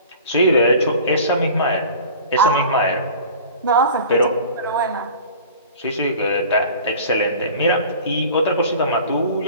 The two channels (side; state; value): both; inverted; correlation -0.42